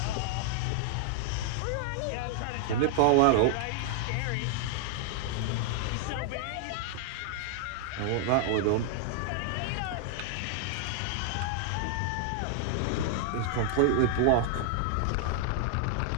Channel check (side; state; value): both; different; correlation 0.00